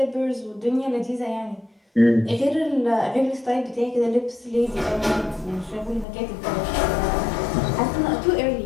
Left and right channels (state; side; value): drops out; right; at 6.1 s